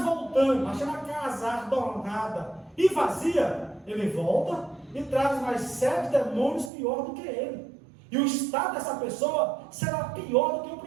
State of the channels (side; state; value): left; drops out; at 6.7 s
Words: voltando, achando a casa adornada e vazia, ele volta e traz mais 7 demônios pior do que ele. E o estado dessa pessoa será pior do que o